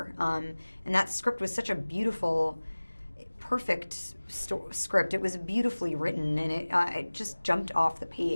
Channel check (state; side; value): inverted; both; correlation -1.00